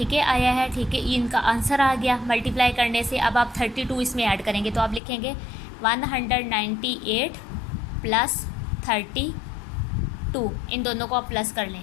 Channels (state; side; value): drops out; right; at 5.0 s